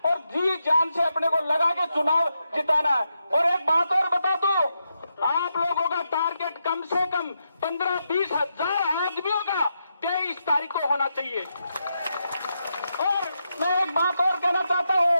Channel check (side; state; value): both; inverted; correlation -0.84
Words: और जी जान से अपने को लगा के चुनाव जिताना है। और एक बात और बता दो, आप लोगों का टारगेट कम से कम 15-20 हजार आदमियों का 23 तारीख को होना चाहिए। और मैं एक बात और कहना चाहता